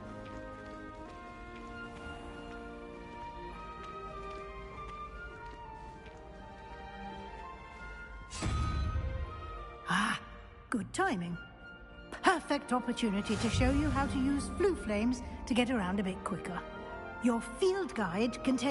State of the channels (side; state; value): both; identical; correlation 1.00